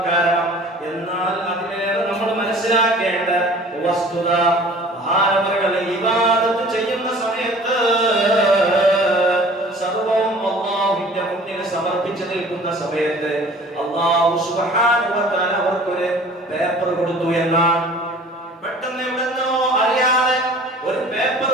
കാരണം. എന്നാൽ അതിലേറെ നമ്മൾ മനസ്സിലാക്കേണ്ട വസ്തുത, മഹാനവറുകൾ ഇബാദത്ത് ചെയ്യുന്ന സമയത്ത് സർവവും അല്ലാഹുവിന്റെ മുന്നിൽ സമർപ്പിച്ചു നിൽക്കുന്ന സമയത്ത് അല്ലാഹു സുബ്ഹാനഹു വ തആല അവർക്കൊരു പേപ്പർ കൊടുത്തു എന്നാണ്. പെട്ടെന്ന് എവിടെന്നോ അറിയാതെ ഒരു പേപ്പർ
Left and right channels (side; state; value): both; normal; correlation 0.47